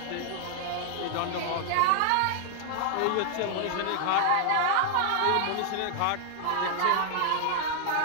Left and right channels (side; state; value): both; different; correlation 0.00